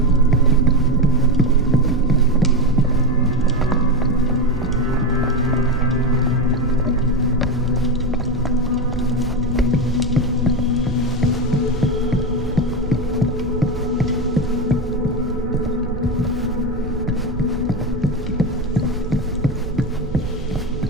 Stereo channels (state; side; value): noise; right; hum, 13 dB below the sound